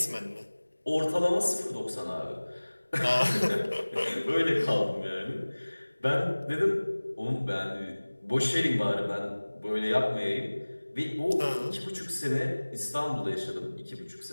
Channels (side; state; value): both; inverted; correlation -1.00